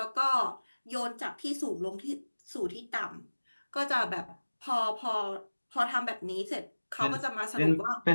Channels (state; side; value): inverted; both; correlation -1.00